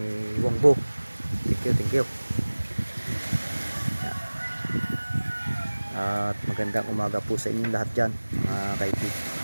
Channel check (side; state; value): both; inverted; correlation -1.00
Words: Wongbo. Thank you. At magandang umaga po sa inyong lahat dyan mga kaipit.